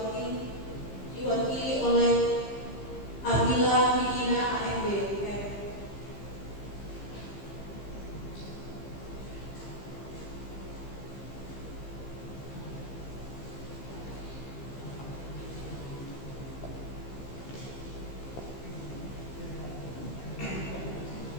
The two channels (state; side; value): late; right; 15 ms